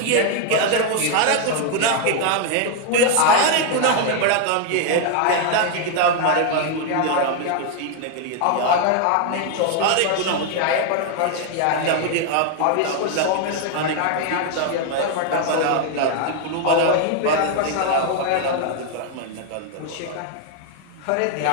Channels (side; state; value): both; different; correlation 0.00